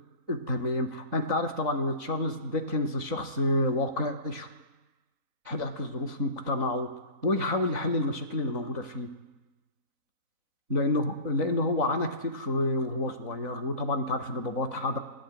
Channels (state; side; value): late; left; 3.9 ms